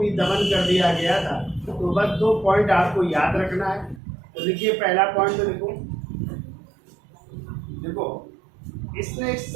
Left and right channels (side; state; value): left; drops out; at 4.0 s